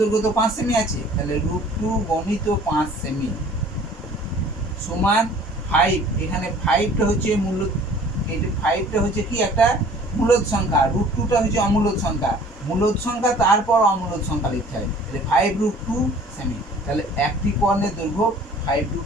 তো 5 সেমি আছে, তাহলে √2 গণিত 5 সেমি সমান 5। এখানে 5টা হচ্ছে মূল, এই 5টা হচ্ছে কি একটা মূলদ সংখ্যা, √2টা হচ্ছে অমূলদ সংখ্যা। মূলদ সংখ্যা তারপর অমূলদ সংখ্যা লিখতে হয়, তাহলে 5√2 সেমি। তাহলে একটি কর্ণের দৈর্ঘ্য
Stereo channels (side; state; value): both; normal; correlation 0.51